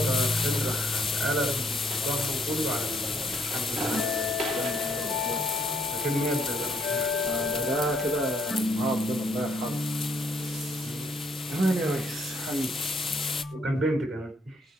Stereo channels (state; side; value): normal; both; correlation 0.69